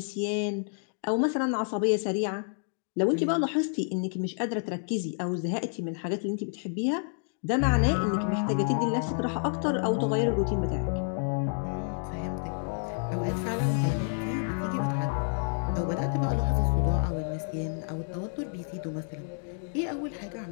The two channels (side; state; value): right; silent; 58 dB below the other